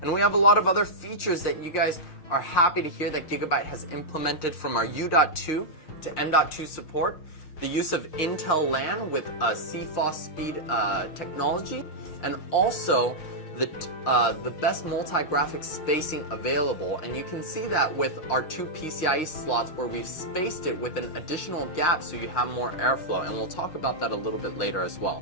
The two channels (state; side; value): late; right; 6.4 ms